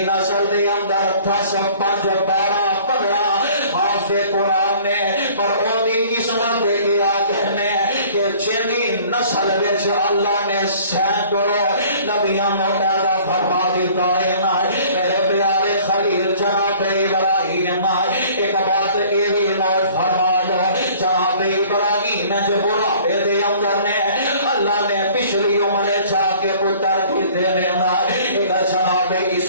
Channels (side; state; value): both; inverted; correlation -0.51